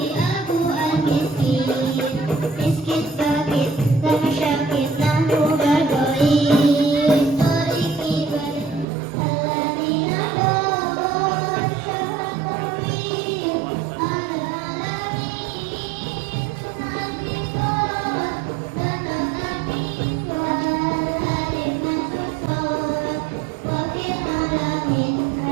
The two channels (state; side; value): drops out; left; at 8.8 s